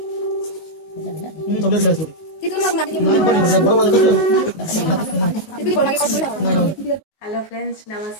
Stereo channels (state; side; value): late; right; 19 ms